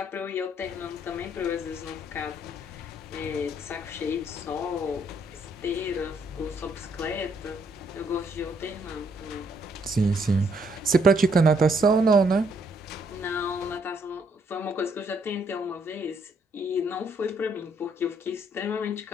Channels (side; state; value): both; normal; correlation 0.70